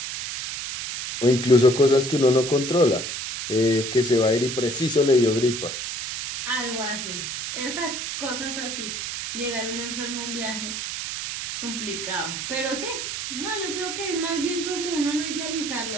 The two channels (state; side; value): noise; right; hiss, 5 dB below the sound